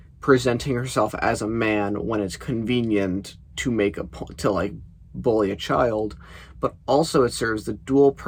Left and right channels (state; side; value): identical; both; correlation 1.00